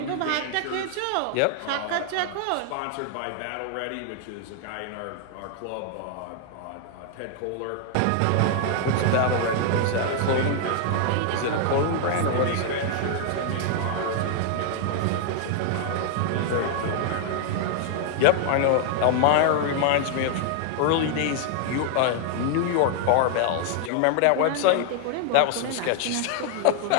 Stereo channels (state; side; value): different; both; correlation 0.00